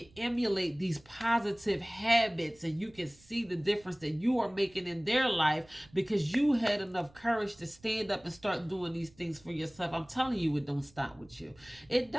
emulate these positive habits and you can see the difference that you are making in their life because you had enough courage to stand up and start doing these things for yourself. I'm telling you, it don't stop with you. It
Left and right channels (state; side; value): noise; right; rumble, 28 dB below the sound